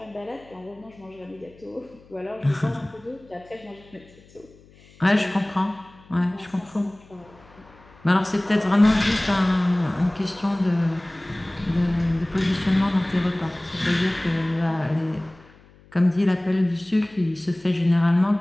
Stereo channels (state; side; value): noise; left; hum, 26 dB below the sound